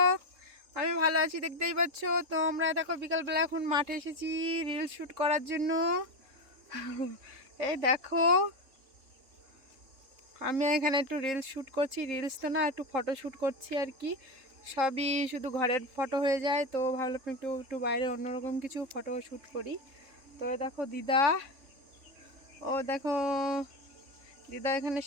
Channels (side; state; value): left; late; 3.7 ms